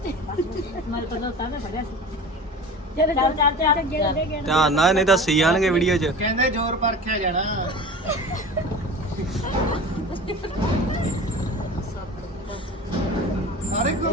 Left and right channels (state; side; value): normal; both; correlation 0.36